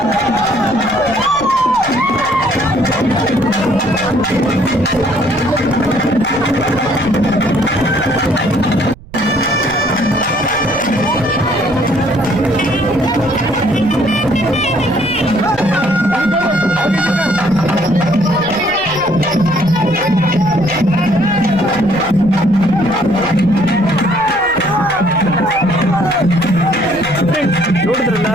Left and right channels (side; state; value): right; noise; rumble, 19 dB below the sound